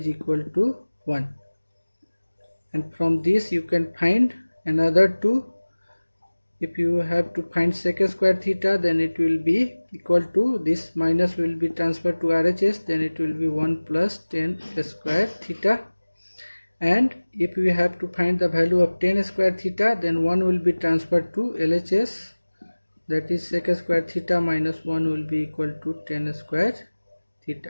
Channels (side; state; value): both; inverted; correlation -1.00